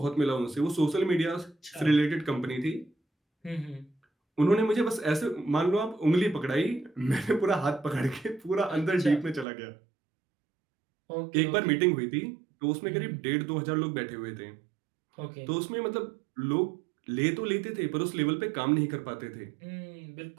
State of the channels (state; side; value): drops out; left; at 9.5 s